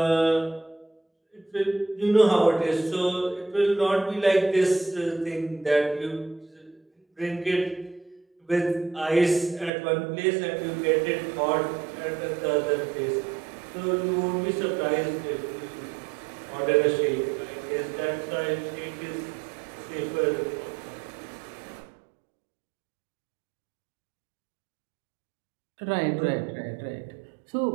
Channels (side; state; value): left; drops out; at 9.7 s